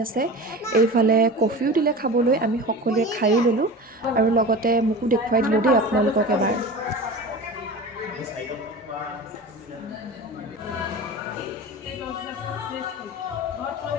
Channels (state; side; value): normal; both; correlation 0.32